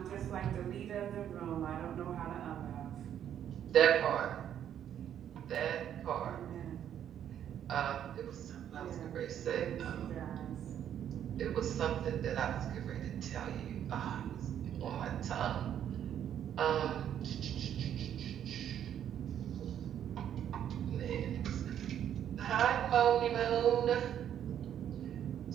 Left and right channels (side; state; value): left; quieter; 9.9 dB